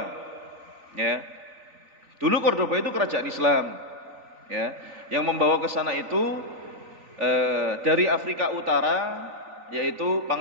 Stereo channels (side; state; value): left; late; 3.9 ms